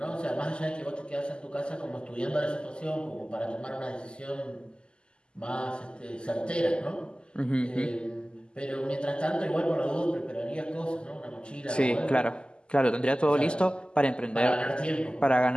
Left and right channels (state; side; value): late; right; 0.049 ms